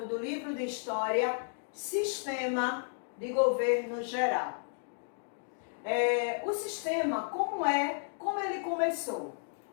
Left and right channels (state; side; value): silent; right; digital silence